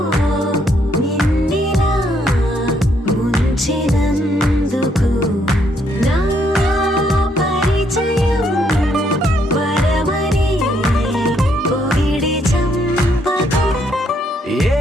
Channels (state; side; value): normal; both; correlation 0.72